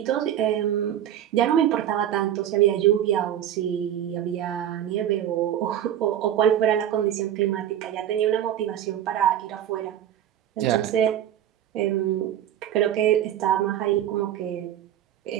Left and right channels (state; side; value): quieter; left; 10.8 dB